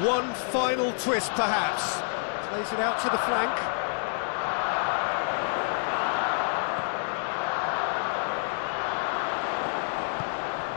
One final twist, perhaps. Plays it out to the flank.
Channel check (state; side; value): silent; right; 59 dB below the other